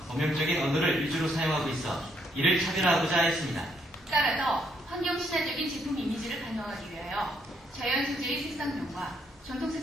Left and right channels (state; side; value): normal; both; correlation 0.72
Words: 범용적인 언어를 위주로 사용하고 있어 이를 차별화하고자 했습니다. 따라서 환경 친화적인 제품 이미지를 반영하기 위하여 자연 소재의 색상명과 전통